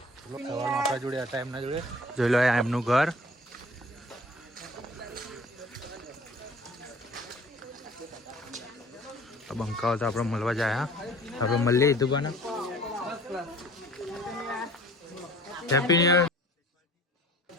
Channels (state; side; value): normal; both; correlation 0.49